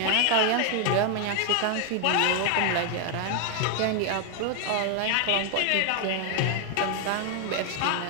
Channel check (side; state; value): both; different; correlation 0.01